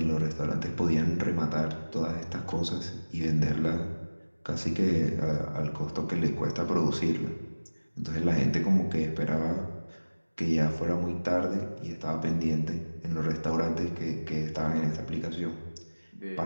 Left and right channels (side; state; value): both; inverted; correlation -1.00